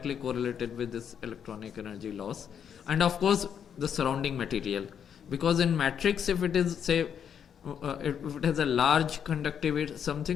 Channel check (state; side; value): quieter; right; 8.1 dB